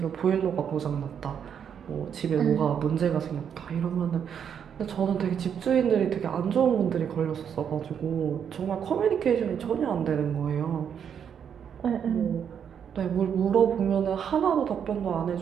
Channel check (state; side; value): quieter; left; 8.0 dB